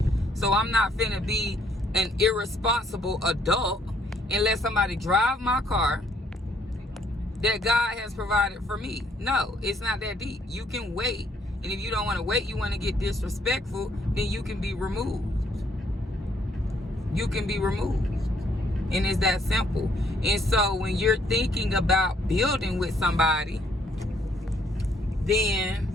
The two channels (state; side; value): normal; both; correlation 0.67